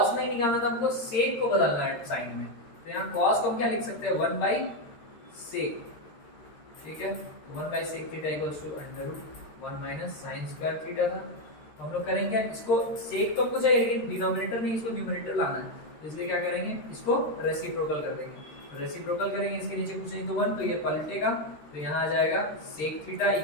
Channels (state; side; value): late; right; 13 ms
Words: नहीं निकालना था, हमको sec को बदलना है sin में, तो यहाँ cos को हम क्या लिख सकते हैं, 1 बाई sec, ठीक है, 1 by sec theta equals to under root 1 minus sin square theta था। तो हम लोग करेंगे इसको, sec तो हमको चाहिए लेकिन डिनोमिनेटर नहीं, इसको न्यूमरेटर लाना है, तो इसलिए क्या करेंगे, इसको रेसिप्रोकल कर देंगे, तो रेसिप्रोकल करेंगे, इसके नीचे कुछ नहीं तो 1, तो ये पलटेगा, तो यहाँ आ जाएगा sec theta